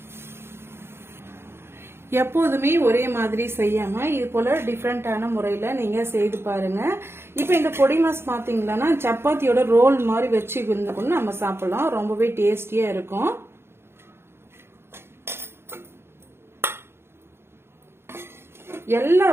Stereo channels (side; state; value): left; late; 0.12 ms